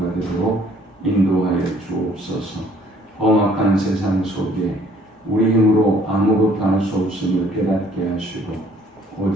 되도록 인도하여 주옵소서. 험악한 세상 속에 우리 힘으로 아무것도 할 수 없음을 깨닫게 하시고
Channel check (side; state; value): both; normal; correlation 0.60